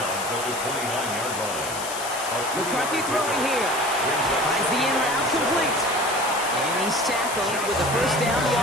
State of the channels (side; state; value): left; noise; hiss, 8 dB below the sound